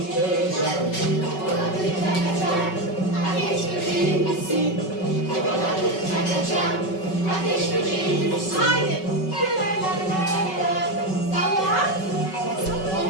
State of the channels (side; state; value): right; late; 5.3 ms